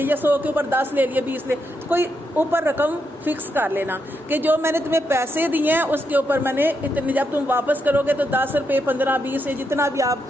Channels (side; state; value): both; normal; correlation 0.81